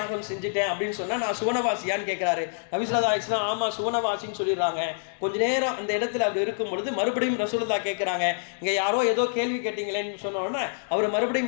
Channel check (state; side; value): silent; right; digital silence